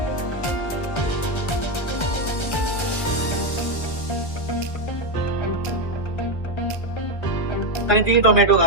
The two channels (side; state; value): right; late; 1.3 ms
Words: आनी ती टोमॅटो